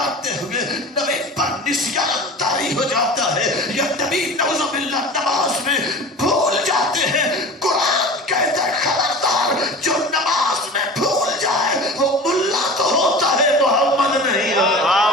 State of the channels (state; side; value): normal; both; correlation 0.36